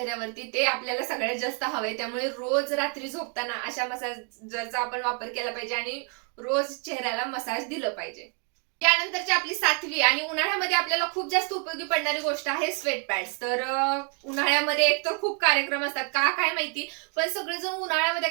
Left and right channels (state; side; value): quieter; left; 39.3 dB